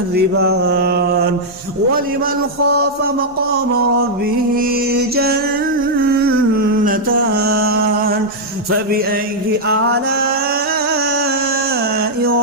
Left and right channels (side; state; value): both; normal; correlation -0.04